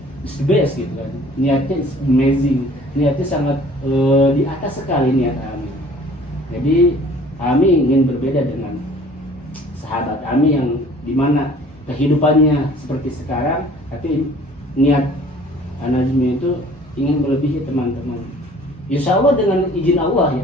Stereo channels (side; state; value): both; normal; correlation 0.51